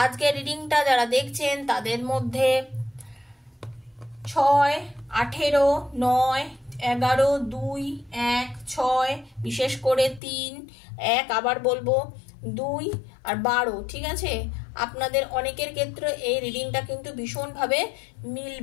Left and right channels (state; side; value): drops out; right; at 10.2 s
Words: আজকে রিডিংটা যারা দেখছেন তাদের মধ্যে 6, 18, 9, 11, 2, 1, 6, বিশেষ করে 3, 1, আবার বলবো 2 আর 12, ঠিক আছে? আপনাদের অনেকের ক্ষেত্রে এই রিডিংটা কিন্তু ভীষণভাবে